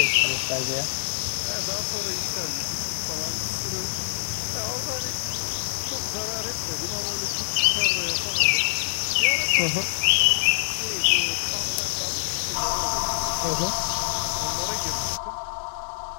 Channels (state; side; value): silent; right; digital silence